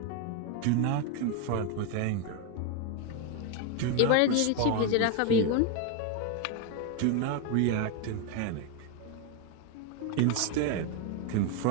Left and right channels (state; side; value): different; both; correlation 0.01